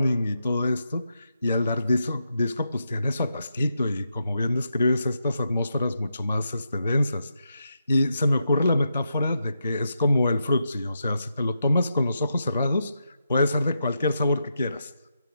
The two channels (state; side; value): inverted; both; correlation -0.84